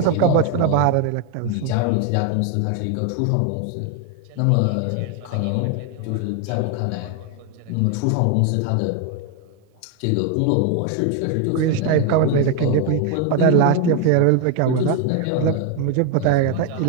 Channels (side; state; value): both; different; correlation 0.01